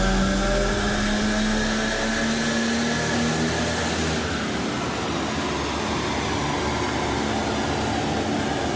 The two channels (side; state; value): both; identical; correlation 1.00